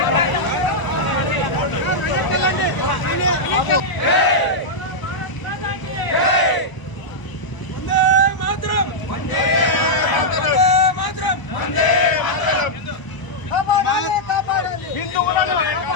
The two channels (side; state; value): right; late; 1.0 ms